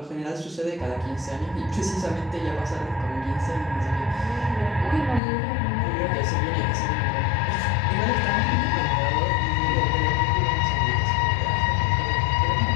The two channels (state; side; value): drops out; right; at 5.2 s